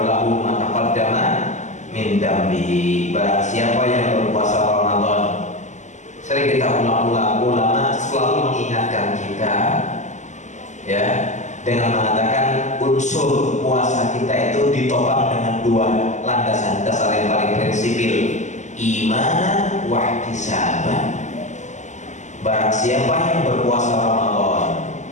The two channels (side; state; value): right; late; 0.34 ms